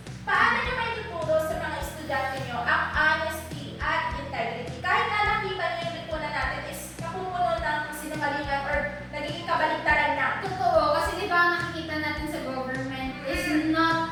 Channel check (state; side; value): identical; both; correlation 1.00